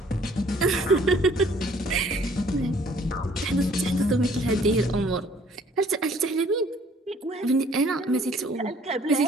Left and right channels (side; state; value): both; normal; correlation 0.58